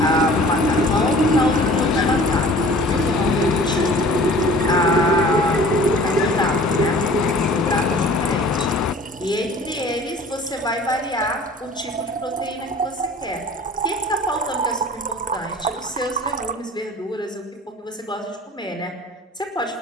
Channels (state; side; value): normal; both; correlation 0.47